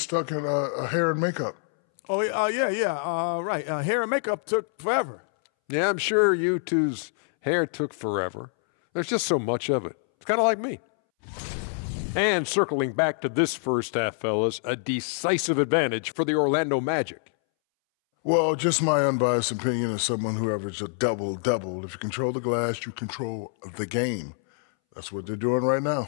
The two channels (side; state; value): right; silent; 61 dB below the other